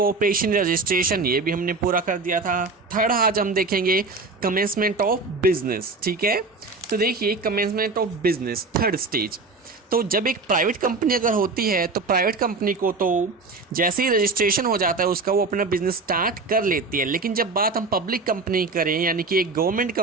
रजिस्ट्रेशन, ये भी हमने पूरा कर दिया था. थर्ड आज हम देखेंगे कमेंसमेंट ऑफ बिजनेस. ठीक है, तो देखिए commencement of business third stage. तो जब एक प्राइवेट कंपनी अगर होती है तो प्राइवेट कंपनी को तो जैसे ही रजिस्ट्रेशन हो जाता है उसका वो अपना बिजनेस स्टार्ट कर लेती है. लेकिन जब बात हम पब्लिक कंपनी करें यानी कि एक गवर्नमेंट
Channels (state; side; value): quieter; left; 3.9 dB